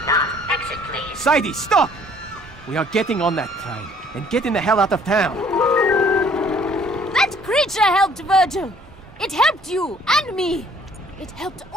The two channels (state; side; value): normal; both; correlation 0.58